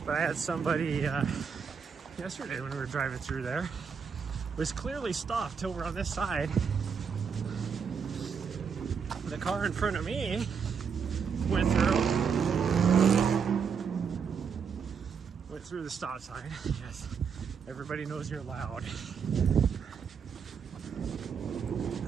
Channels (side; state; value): left; quieter; 6.4 dB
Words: But I had somebody yesterday when we were driving through there, was clearly stopped over on this side. The car in front of me went through the stop sign. Yes, everybody knows you're loud.